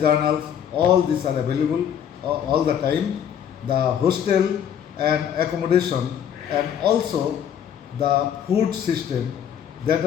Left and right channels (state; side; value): quieter; right; 9.0 dB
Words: all these are available all the time. The hostel and accommodation and also the food system that